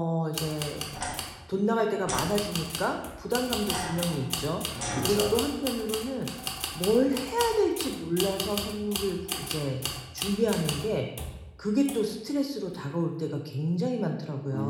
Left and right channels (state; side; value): identical; both; correlation 1.00